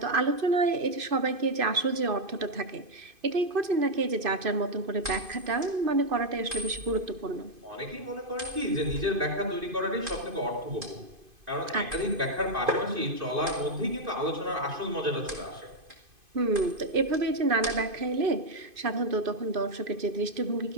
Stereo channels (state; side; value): late; left; 2.5 ms